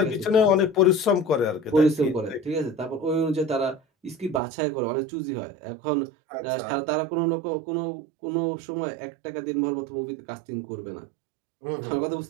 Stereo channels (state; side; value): drops out; left; at 4.4 s